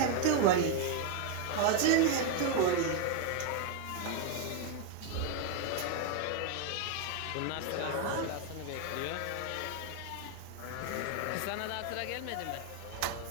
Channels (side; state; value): both; different; correlation 0.01